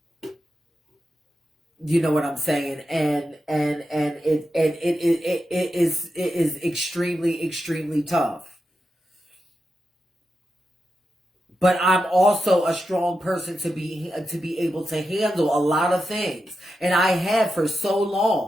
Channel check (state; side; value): normal; both; correlation 0.89